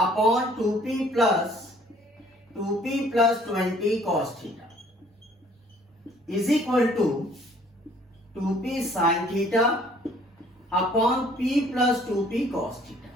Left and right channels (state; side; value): normal; both; correlation 0.58